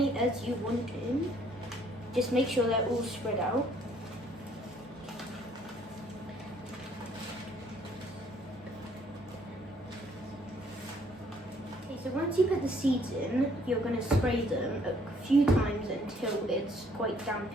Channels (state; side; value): normal; both; correlation 0.63